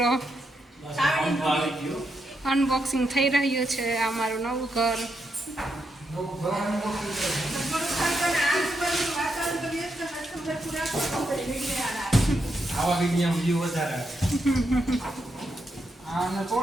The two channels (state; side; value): normal; both; correlation 0.82